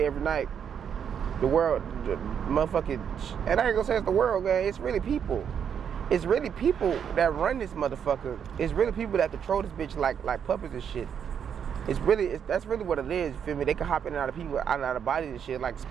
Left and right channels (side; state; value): left; quieter; 7.9 dB